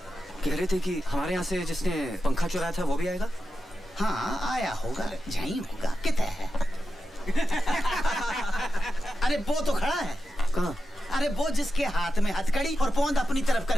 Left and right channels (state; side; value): normal; both; correlation 0.90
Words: कह रहे थे कि हमारे यहाँ से जिसने पंखा चुराया था वो भी आएगा? हाँ आया होगा, यहीं होगा। कितना है? अरे वो तो खड़ा है। कहाँ? अरे वो जिसके हाथ में हथकड़ी और पोंद अपनी तरफ